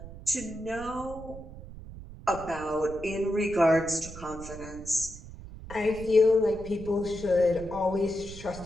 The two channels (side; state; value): right; noise; rumble, 14 dB below the sound